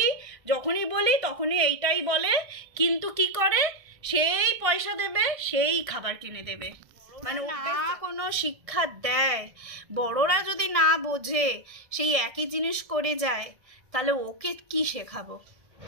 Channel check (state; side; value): late; left; 1.7 ms